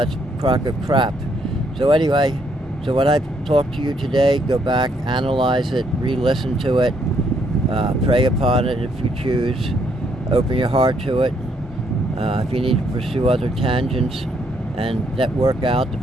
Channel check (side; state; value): both; normal; correlation 0.72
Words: that's a crock of crap. So anyway, so when I talk to you today, go back, analyze it, re-listen to it, pray upon it if you choose, open your heart to it. If you need to pursue other tangents and network out to